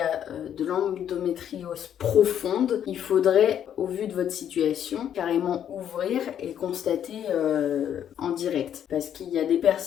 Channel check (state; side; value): quieter; right; 9.6 dB